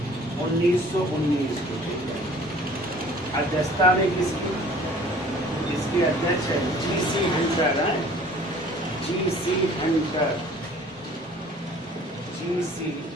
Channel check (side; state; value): both; normal; correlation 0.51